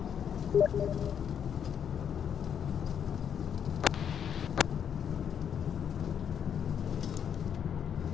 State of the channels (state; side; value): quieter; right; 8.3 dB